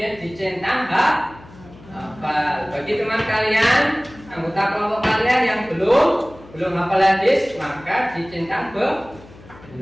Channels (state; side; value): noise; left; hum, 21 dB below the sound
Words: dicentang hafal. Bagi teman kalian, anggota kelompok kalian yang belum hafal hadis, maka dicentang